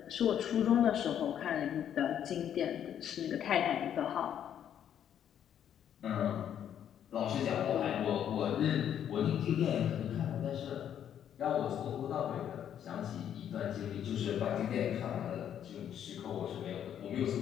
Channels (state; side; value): quieter; right; 9.6 dB